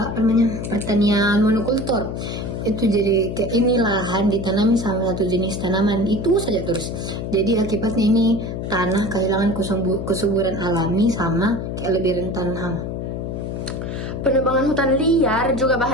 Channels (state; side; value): noise; left; hum, 5 dB below the sound